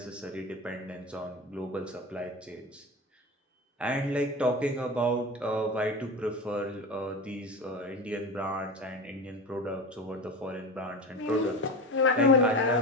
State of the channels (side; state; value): both; normal; correlation 0.27